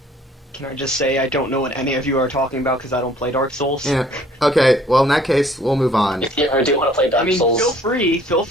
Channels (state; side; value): normal; both; correlation 0.57